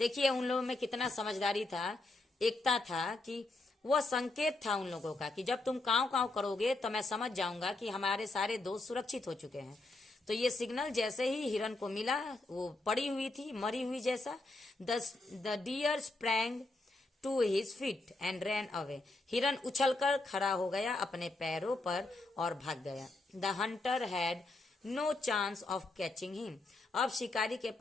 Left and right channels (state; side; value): quieter; right; 3.0 dB